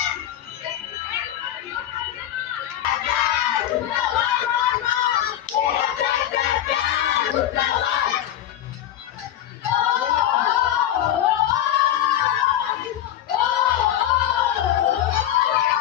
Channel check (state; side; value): quieter; right; 11.8 dB